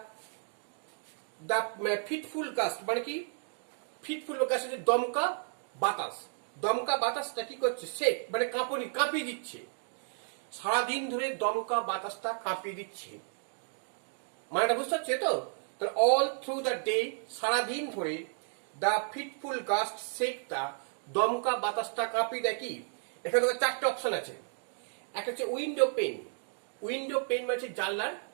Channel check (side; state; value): left; silent; 56 dB below the other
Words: দ্য ফিটফুল গাস্ট মানে কি, ফিটফুল গাস্ট হচ্ছে দমকা বাতাস। দমকা বাতাসটা কি করছে, শেক মানে কাঁপুনি, কাঁপিয়ে দিচ্ছে। সারাদিন ধরে দমকা বাতাসটা কাঁপিয়ে দিচ্ছে, মানেটা বুঝতে পারছে তো? তাহলে অল থ্রু দ্য ডে সারাদিন ধরে, the fitful gust shake the দমকা বাতাসটা কাঁপিয়ে দেয়। কি এখানে তোমার 4টে অপশন আছে। একটা হচ্ছে উইন্ডো পেন। উইন্ডো পেন মানে হচ্ছে জানলার